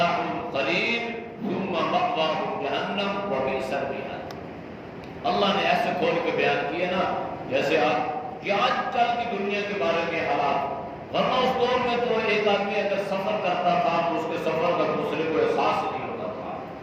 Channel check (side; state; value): both; identical; correlation 1.00